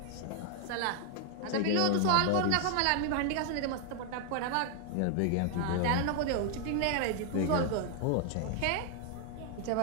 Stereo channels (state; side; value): different; both; correlation 0.00